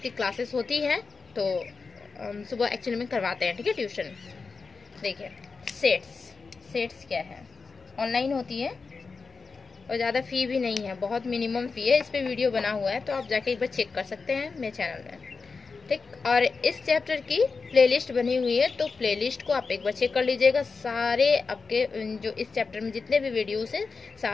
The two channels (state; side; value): quieter; right; 4.6 dB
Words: क्लासेस होती हैं, तो हम सुबह एक्चुअली में करवाते हैं। ठीक है, ट्यूशन। देखिए सेट्स क्या है, ऑनलाइन होती है और ज़्यादा फी भी नहीं है, बहुत मिनिमम फी है। इस पर वीडियो बना हुआ है, तो आप जाके एक बार चेक कर सकते हैं मेरे चैनल में। ठीक, और इस चैप्टर की प्लेलिस्ट बनी हुई है, तो प्लेलिस्ट को आप एक बार चेक कर लीजिएगा। सारे आपके जो इस चैप्टर में जितने भी वीडियोस हैं